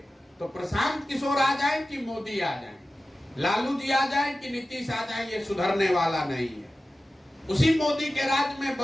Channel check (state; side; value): normal; both; correlation 0.95